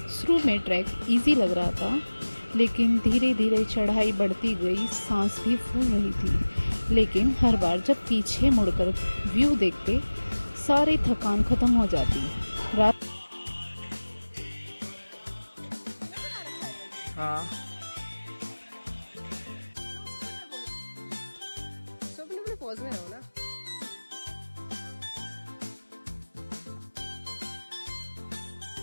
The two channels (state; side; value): inverted; both; correlation -1.00